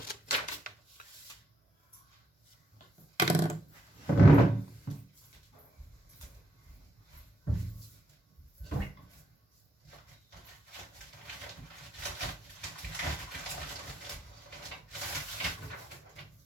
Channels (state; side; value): normal; both; correlation 0.81